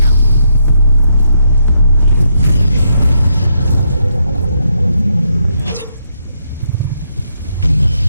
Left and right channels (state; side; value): inverted; both; correlation -0.77